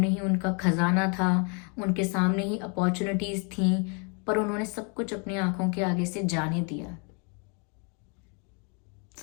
ही उनका खजाना था, उनके सामने ही अपॉर्चुनिटीज़ थीं, पर उन्होंने सब कुछ अपनी आंखों के आगे से जाने दिया।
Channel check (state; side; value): quieter; right; 36.2 dB